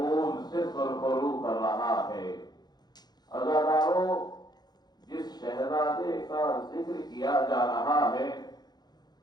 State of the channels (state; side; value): late; right; 0.20 ms